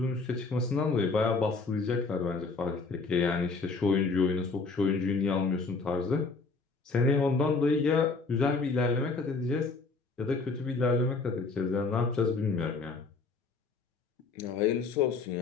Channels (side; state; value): right; quieter; 4.1 dB